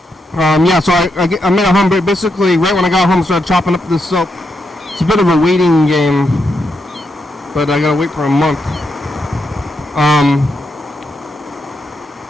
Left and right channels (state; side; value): normal; both; correlation 0.82